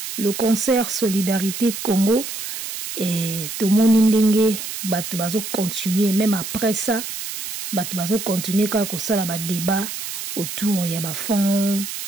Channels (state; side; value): noise; right; hiss, 7 dB below the sound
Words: le concert Solidarité Congo et tout le monde va continuer, même après ça, va continuer quand ça la débat autour il y a fond,